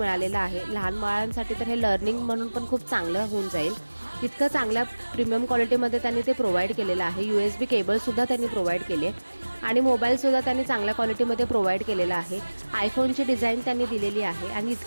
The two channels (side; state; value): both; inverted; correlation -1.00